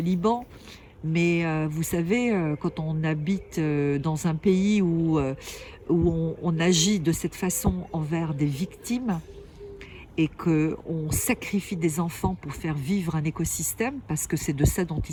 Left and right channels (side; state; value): both; identical; correlation 1.00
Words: mais vous savez, quand on habite dans un pays où on agit de cette façon envers des victimes et qu'on sacrifie des enfants pour faire vivre un écosystème, parce que c'est de ça dont